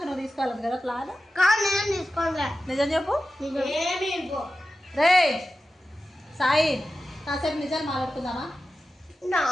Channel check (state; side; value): normal; both; correlation 0.93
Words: నువ్వు తీసుకోవాలి కదా ప్లాన్. నిజం చెప్పు రే సాయి, కాసేపు నిజాలు మాట్లాడుకుందామా?